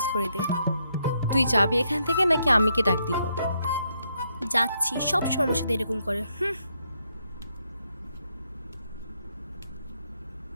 করে দে। তুই যাবি এখান থেকে নাকি আমি কে ডাক দিব? যাচ্ছি, সব সময় আমার সাথে এরকম করে।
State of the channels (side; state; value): both; inverted; correlation -0.77